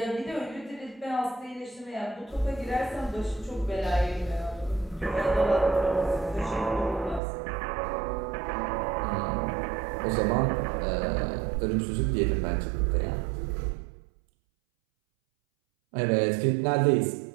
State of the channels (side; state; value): left; drops out; at 7.2 s